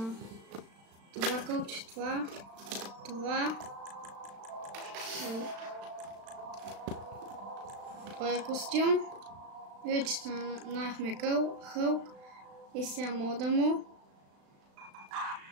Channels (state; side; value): late; left; 36 ms